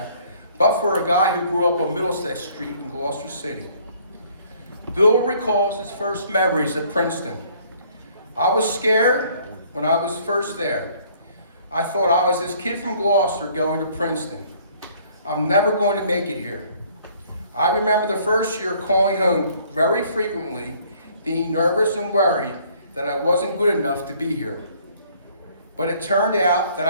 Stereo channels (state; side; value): inverted; both; correlation -0.60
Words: but for a guy who grew up on Middlesex Street in Gloucester City. Bill recalls his first memories at Princeton. I was scared when I was first there. I thought I was this kid from Gloucester going to Princeton. I'm never going to make it here. I remember the first year calling home very frequently, being nervous and worried that I wasn't good enough to be here. But it turned out that